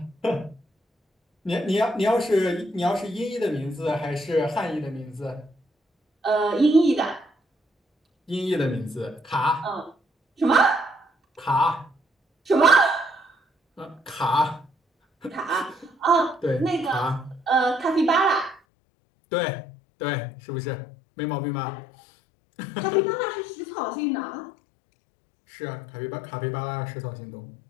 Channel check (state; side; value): drops out; right; at 18.6 s